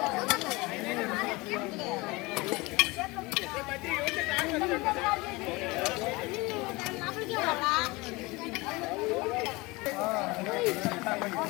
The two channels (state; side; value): quieter; right; 23.5 dB